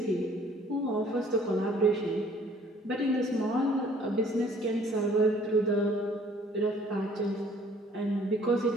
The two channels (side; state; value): both; normal; correlation 0.57